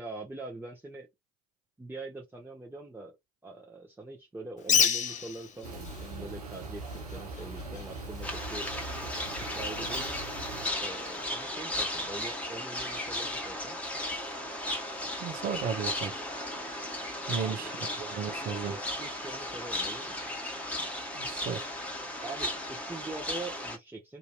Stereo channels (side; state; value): both; normal; correlation 0.21